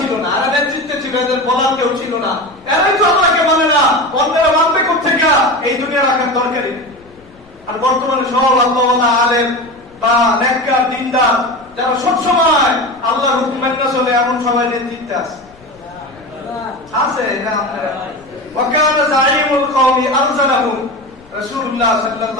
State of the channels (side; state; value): left; noise; rumble, 28 dB below the sound